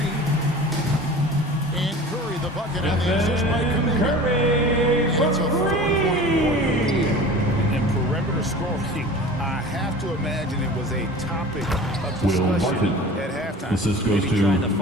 And Curry the bucket on the assist by Kuminga. And it's a 4-point quarter. And perimeter scoring, I have to imagine it was a topic of discussion at halftime. Assist goes Maybe to trying to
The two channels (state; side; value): normal; both; correlation 0.39